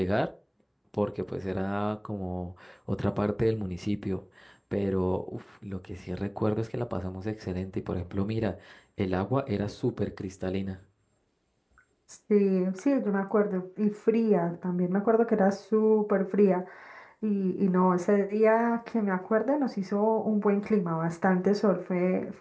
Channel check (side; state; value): both; identical; correlation 1.00